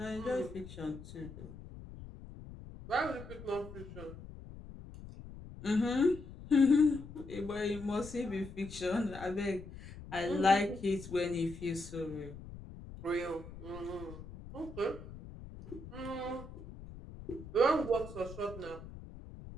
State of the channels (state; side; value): noise; left; rumble, 14 dB below the sound